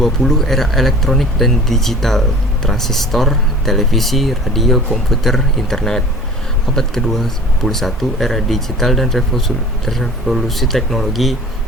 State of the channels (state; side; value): normal; both; correlation 0.45